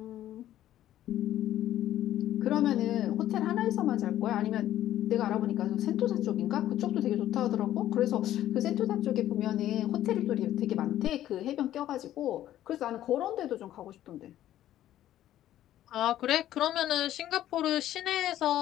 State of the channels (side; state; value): right; quieter; 12.7 dB